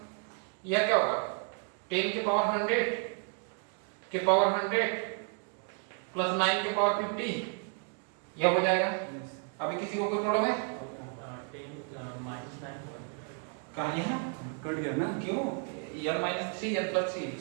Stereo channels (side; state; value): left; quieter; 39.9 dB